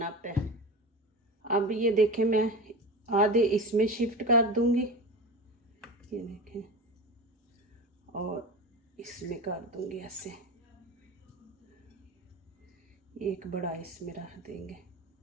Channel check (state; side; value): normal; both; correlation 0.28